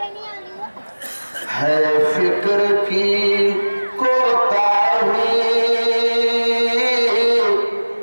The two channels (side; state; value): both; inverted; correlation -1.00